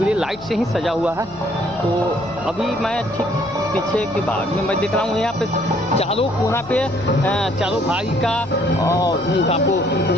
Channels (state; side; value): noise; left; hum, 23 dB below the sound